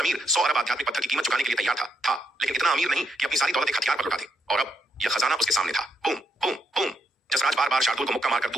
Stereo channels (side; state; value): both; normal; correlation 0.78